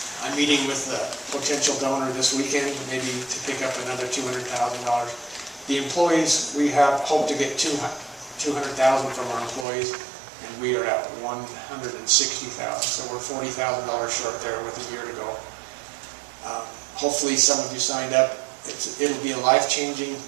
I'm meeting with a potential donor this weekend, maybe to pick up another $200,000. The employees, we have hoped to get $200,000 from our employees, and we are at $160,000. So we're $40,000 short there with a year to go. Hopefully some of you signed up. It'll be a life-changing,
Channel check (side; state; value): left; drops out; at 9.7 s